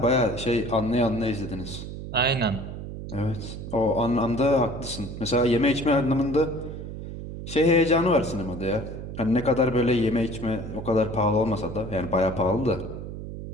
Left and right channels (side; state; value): right; noise; hum, 9 dB below the sound